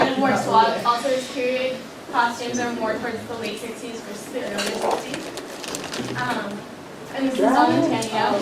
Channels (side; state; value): both; identical; correlation 1.00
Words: of more suave. Also, his period costumes are more towards the late 60s versus the early 60s. And this is on Antonio.